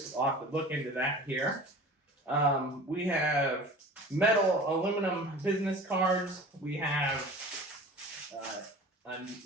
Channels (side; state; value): both; normal; correlation 0.40